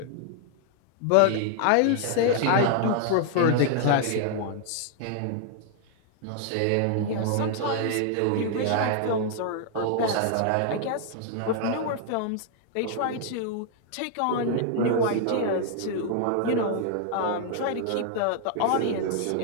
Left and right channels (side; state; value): both; different; correlation 0.00